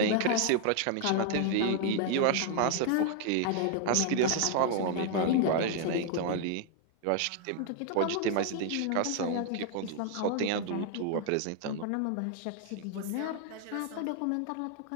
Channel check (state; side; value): different; both; correlation 0.00